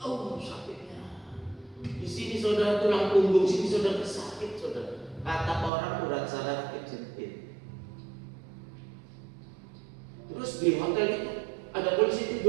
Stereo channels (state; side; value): drops out; left; at 5.7 s